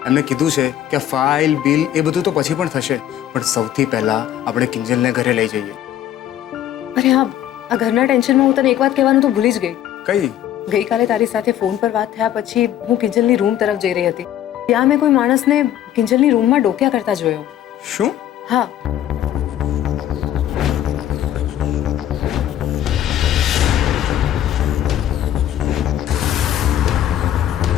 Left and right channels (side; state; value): right; quieter; 11.5 dB